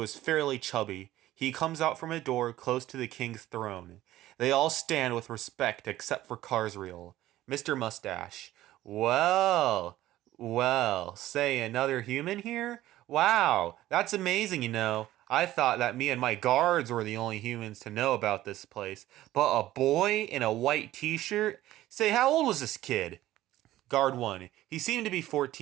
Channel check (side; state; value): left; quieter; 15.0 dB